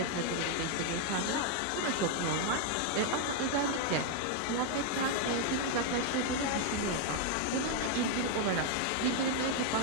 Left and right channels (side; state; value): both; different; correlation 0.00